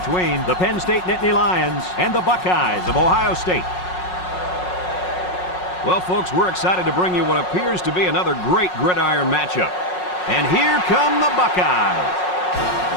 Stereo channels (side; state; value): right; late; 5.5 ms